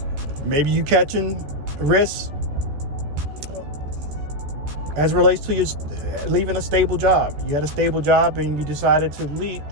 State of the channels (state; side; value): late; left; 14 ms